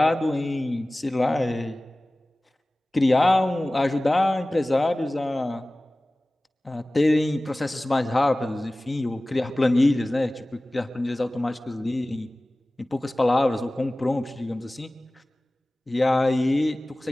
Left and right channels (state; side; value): normal; both; correlation 0.98